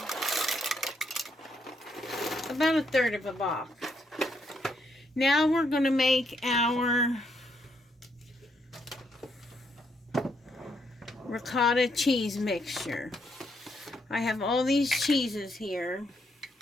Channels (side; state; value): both; normal; correlation 0.75